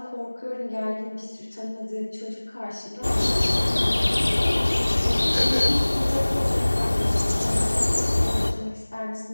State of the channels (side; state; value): both; inverted; correlation -1.00